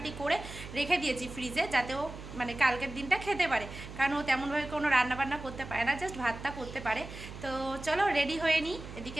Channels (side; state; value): right; noise; hum, 12 dB below the sound